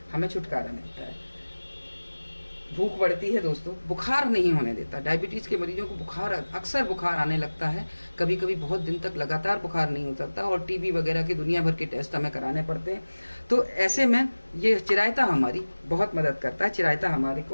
हमें छुटकारा मिलता है। भूख बढ़ती है दोस्तों, बुखार नहीं होने देता। डायबिटीज के मरीजों को बुखार, अक्सर बुखार आने लगता है, कभी कभी बहुत दिन तक लगातार बुखार नहीं उतरता और टीबी वगैरह के दुनिया भर के टेस्ट हमें कराने पड़ते हैं। तो ऐसे में ये चिरायता हमारी बहुत मदद करता है। चिरायता हमारे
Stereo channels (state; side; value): inverted; both; correlation -1.00